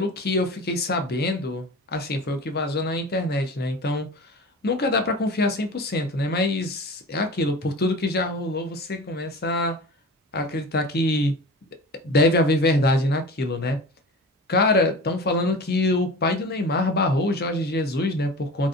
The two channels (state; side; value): normal; both; correlation 0.35